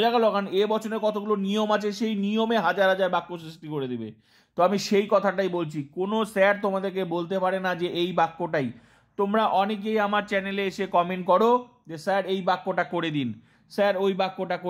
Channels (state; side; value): identical; both; correlation 1.00